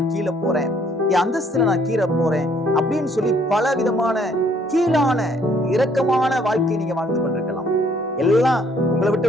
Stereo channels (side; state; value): both; normal; correlation 0.64